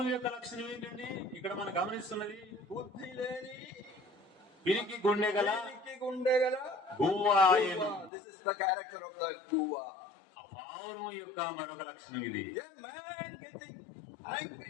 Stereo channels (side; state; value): right; drops out; at 8.1 s